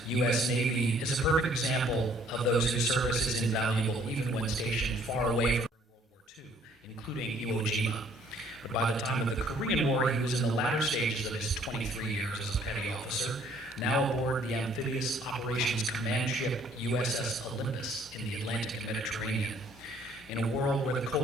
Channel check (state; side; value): normal; both; correlation 0.61